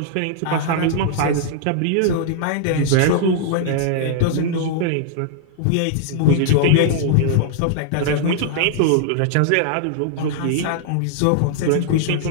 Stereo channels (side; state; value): both; different; correlation -0.01